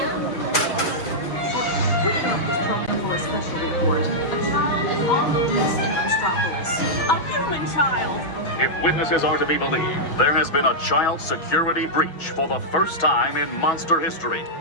For a special report. A child is on the loose in Metropolis. A human child. If witnesses are to be believed, there has been a child security breach for the first time in monster history.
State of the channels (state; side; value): late; right; 6.1 ms